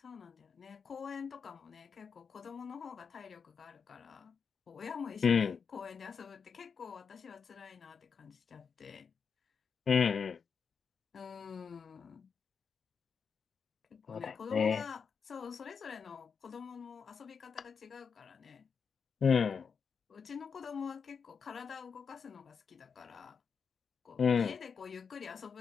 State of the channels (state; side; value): quieter; right; 6.1 dB